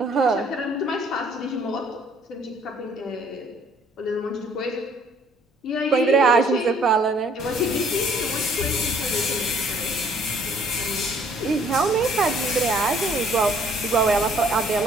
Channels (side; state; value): both; normal; correlation 0.60